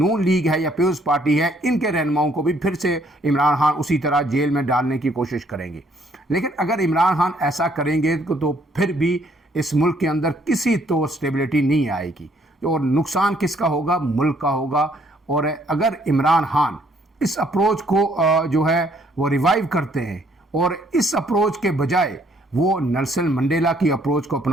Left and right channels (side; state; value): both; normal; correlation 0.66